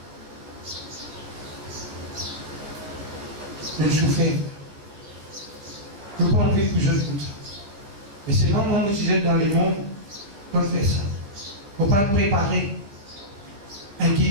Le souffert. Je ne peux pas enlever que je comme ça. Et c'est moi, si j'aime dans les mondes, on fait ça. Il ne faut pas le préparer.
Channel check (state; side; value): late; left; 15 ms